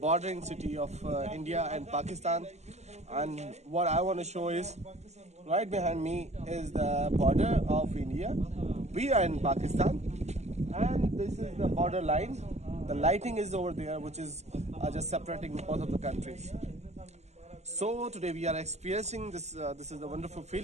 city of India and Pakistan, and what I want to show is right behind me is the border of India. We are in Pakistan and this is the border line. The lighting is over there, which is just separating both of the countries. So today we are experiencing this. This is a wonderful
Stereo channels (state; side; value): late; left; 0.33 ms